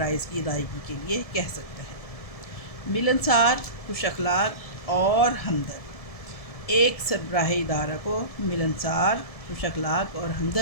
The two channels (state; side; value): late; right; 1.7 ms